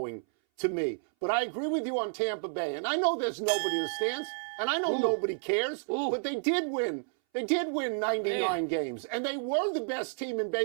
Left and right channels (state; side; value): silent; left; 57 dB below the other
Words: to me. But I agree with you on Tampa Bay, and I know there's nobody in the stands, and I know nobody cares, but they did win. They did win 99 games, and they were the best team in